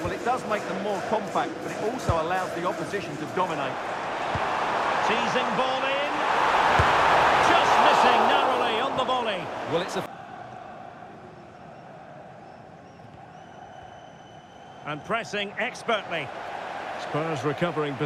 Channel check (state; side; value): identical; both; correlation 1.00